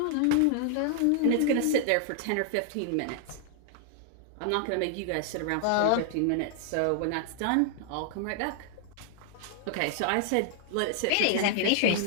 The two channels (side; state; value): both; different; correlation -0.01